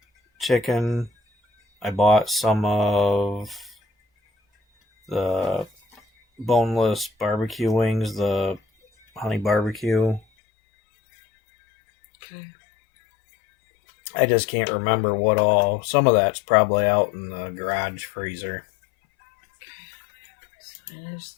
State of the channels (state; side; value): drops out; right; at 10.2 s